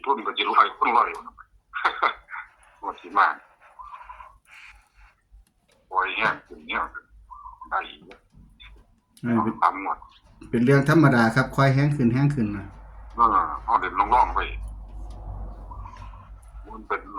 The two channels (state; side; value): identical; both; correlation 1.00